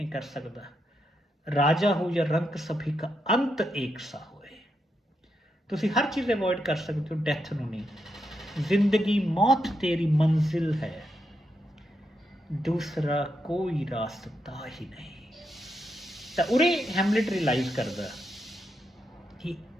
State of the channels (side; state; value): both; normal; correlation 0.83